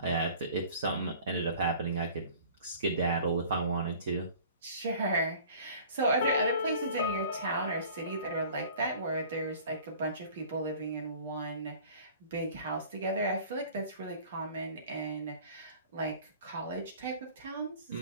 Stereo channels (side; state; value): both; inverted; correlation -0.47